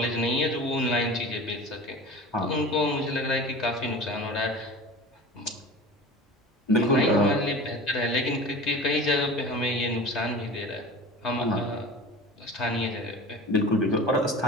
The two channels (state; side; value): normal; both; correlation 0.36